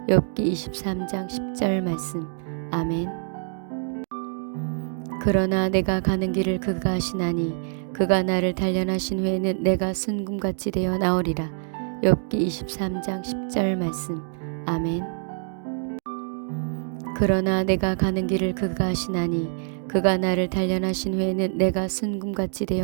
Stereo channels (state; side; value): silent; left; digital silence